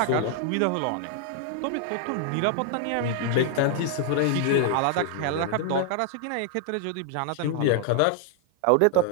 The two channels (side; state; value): both; different; correlation 0.00